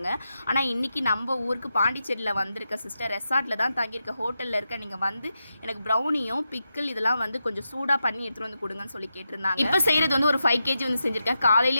ஆனால் இன்றைக்கி நம்ம ஊருக்கு பாண்டிச்சேரியில் வந்திருக்க சிஸ்டர் ரெசார்ட்டில் தான் தங்கியிருக்க ஹோட்டலில் இருக்க. நீங்கள் வந்து எனக்கு ப்ரௌனியும் பிக்கிள் இதெல்லாம் வந்து கொஞ்சம் சூடாக பண்ணி எடுத்துகிட்டு வந்து கொடுங்கன்னு சொல்லி கேட்டிருந்தாங்க. இப்போ செய்கிறது வந்து ஒரு 5 kg வந்து செஞ்சுருக்கேன்.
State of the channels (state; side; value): inverted; both; correlation -0.88